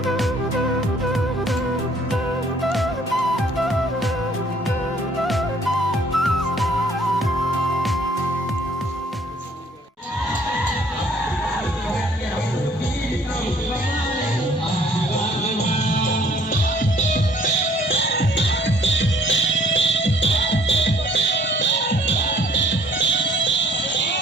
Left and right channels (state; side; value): normal; both; correlation 0.58